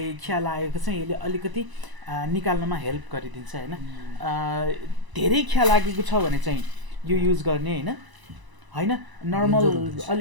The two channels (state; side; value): late; left; 1.0 ms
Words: खिया लागेको चाहिँ यसले अलिकति निकाल्नमा हेल्प गरिदिन्छ होइन धेरै खिया लागेको छ भने चाहिँ यो युज गर्ने होइन होइन नर्मल